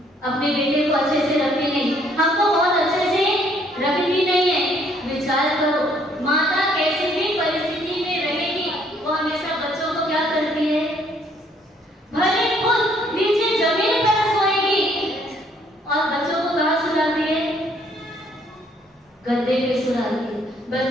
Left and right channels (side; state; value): both; normal; correlation 0.65